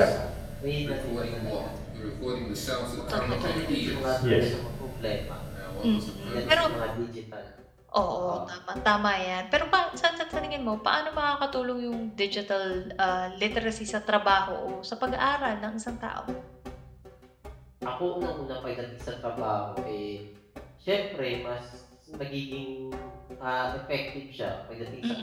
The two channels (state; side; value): identical; both; correlation 1.00